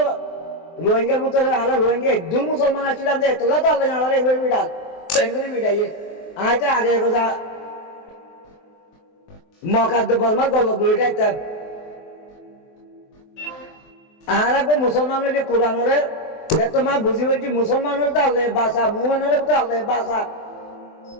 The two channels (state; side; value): late; right; 23 ms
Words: রোহিঙ্গার মতো আরো রোহিঙ্গা একদূর মুসলমান ছিলাম যে তোলা তো আল্লাহ আলাদা একবার বিড়াল বেঙ্গলি বিড়াইয়ে আয়টা আগে কথা মকাদ্দ বর্মার গল্প বইটা একটা আর একটা মুসলমান হইলে কোরআনরে তোমার বুঝি বলছি মুসলমান হলে তো আল্লাহ বাসা মুসলমান হলে তো আল্লাহ বাসা